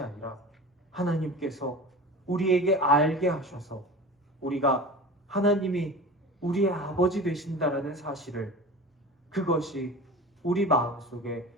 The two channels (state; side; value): normal; both; correlation 0.34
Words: 아니라 하나님께서 우리에게 알게 하셔서 우리가 하나님이 우리의 아버지 되신다라는 사실을 그것이 우리 마음속에